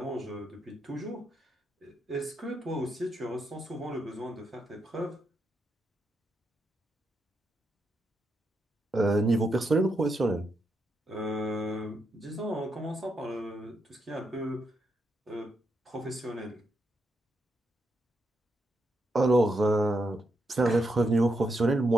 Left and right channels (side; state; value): both; normal; correlation 0.82